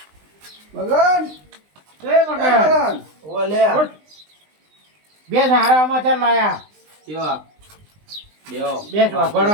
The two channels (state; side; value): late; left; 20 ms